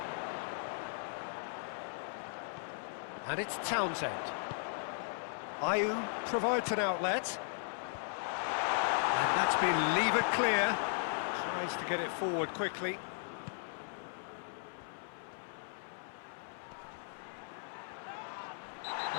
And it's Townsend. Ayew provides an outlet. And that's been levered clear. Tries to get it forward quickly.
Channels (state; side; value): silent; right; 53 dB below the other